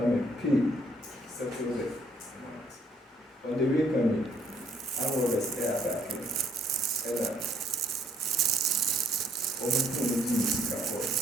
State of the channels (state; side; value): normal; both; correlation 0.65